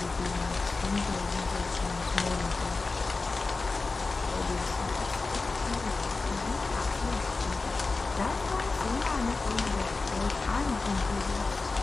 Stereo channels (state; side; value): quieter; right; 3.8 dB